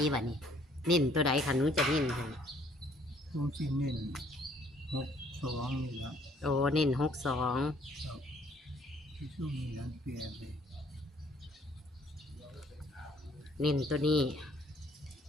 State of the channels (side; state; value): both; normal; correlation 0.62